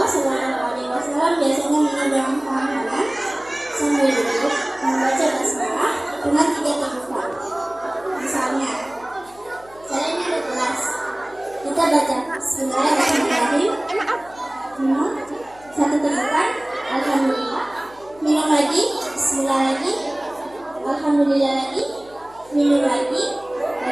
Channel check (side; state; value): left; noise; hum, 25 dB below the sound